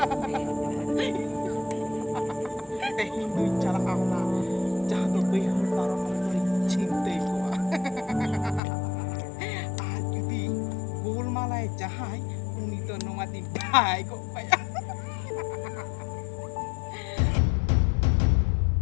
Hindu cara Allah, jatuh behar para orang cinta ku. Aku di bul malai jahai, uni to nomatin bai kok payah.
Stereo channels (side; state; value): right; drops out; at 8.6 s